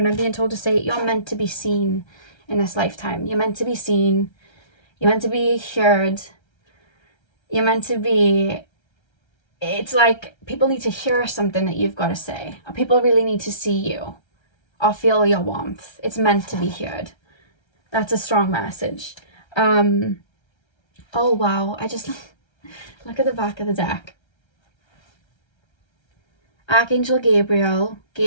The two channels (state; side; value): late; right; 1.3 ms